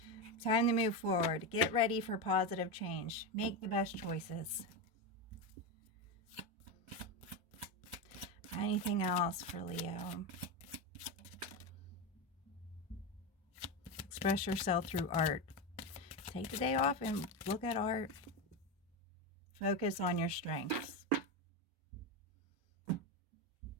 Time to move forward. Get ready for positive change. Make the best choices. Anything else for Leo? Express yourself through art. Take the day off and look at art. Focus on your strengths.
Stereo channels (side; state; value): both; normal; correlation 0.14